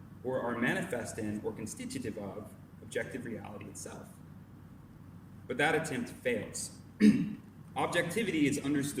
or are manifest in or constitutive of, objective reality itself. But that attempt fails. Objectivity is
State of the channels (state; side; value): identical; both; correlation 1.00